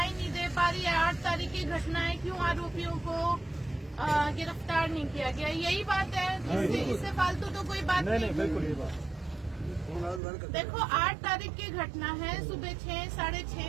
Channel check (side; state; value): left; drops out; at 10.2 s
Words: नहीं दे पा रही है। 8 तारीख की घटना है, क्यों आरोपियों को गिरफ्तार नहीं किया गया? यही बात है, इससे फालतू तो कोई बात नहीं। बिल्कुल ये बात। देखो 8 तारीख की घटना है, सुबह 6 साढ़े